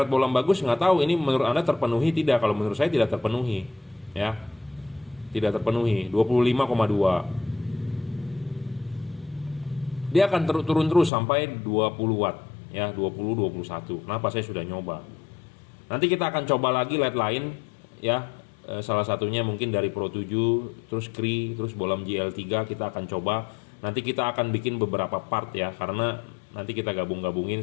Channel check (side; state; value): right; drops out; at 11.1 s